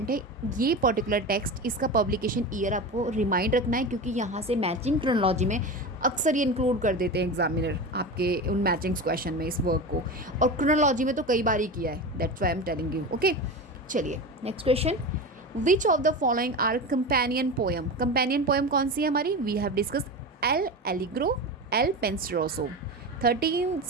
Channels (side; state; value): both; normal; correlation 0.25